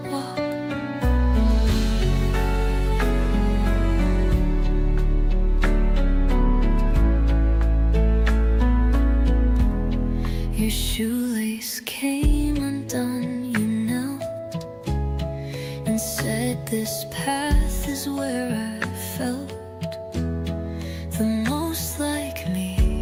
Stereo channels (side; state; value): both; identical; correlation 1.00